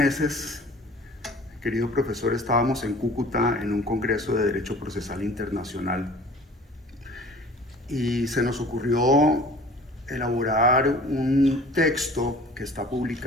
querido profesor, estábamos en Cúcuta en un congreso de Derecho Procesal Internacional y se nos ocurrió elaborar un texto que está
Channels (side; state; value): both; normal; correlation 0.47